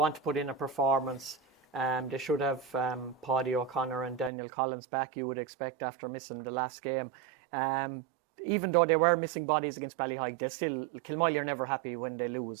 to put in a performance. They should have Paddy O'Connor and Daniel Collins back, you would expect, after missing the last game. Even though they were missing bodies against Ballyheigue, Kilmoyley are never happy when they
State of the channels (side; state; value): left; drops out; at 4.3 s